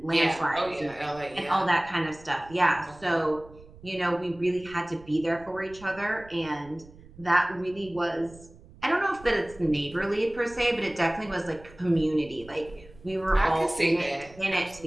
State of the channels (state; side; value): noise; right; rumble, 22 dB below the sound